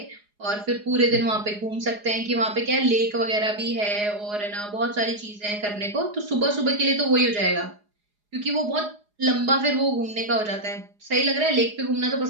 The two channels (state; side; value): late; left; 4.8 ms